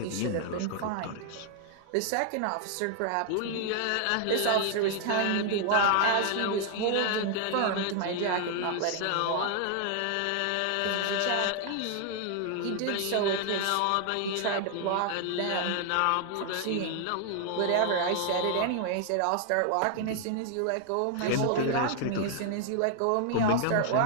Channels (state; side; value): different; both; correlation 0.00